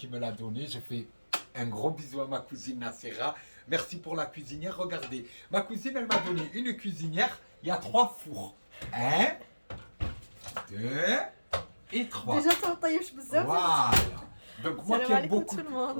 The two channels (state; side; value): inverted; both; correlation -1.00